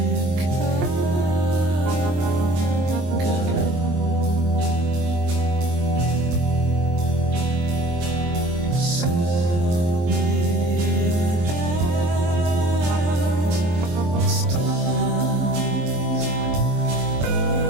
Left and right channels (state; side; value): late; left; 23 ms